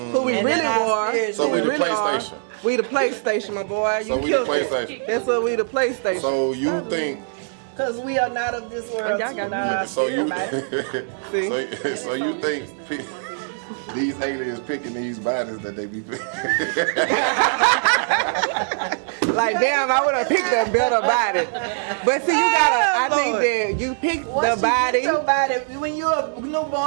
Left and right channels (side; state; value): left; silent; 64 dB below the other